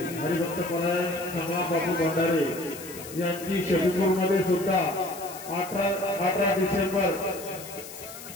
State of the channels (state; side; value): noise; left; hiss, 14 dB below the sound